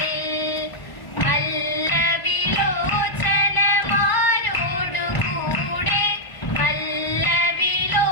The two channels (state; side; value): late; right; 1.0 ms